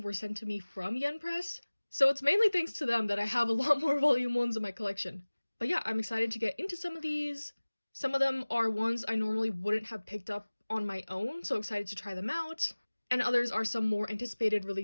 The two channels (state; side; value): inverted; both; correlation -1.00